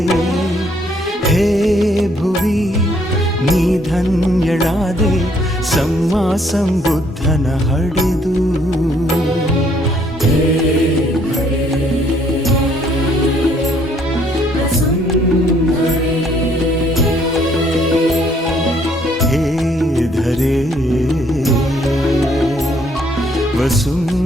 ಹೇ ಭುವಿ ನೀ ಧನ್ಯಳಾದೆ ಸಮ್ಮಾ ಸಂಬುದ್ಧನ ಹಡೆದು. ಹೇ ಧರೆ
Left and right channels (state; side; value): normal; both; correlation 0.66